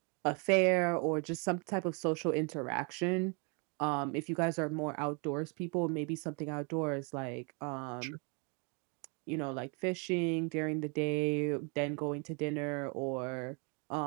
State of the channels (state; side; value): quieter; left; 34.9 dB